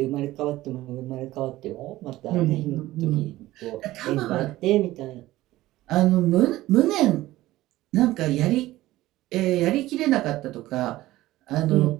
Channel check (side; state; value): left; quieter; 16.5 dB